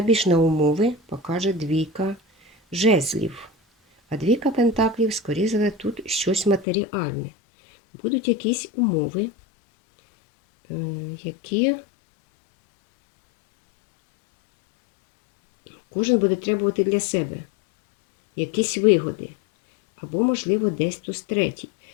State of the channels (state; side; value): drops out; right; at 6.7 s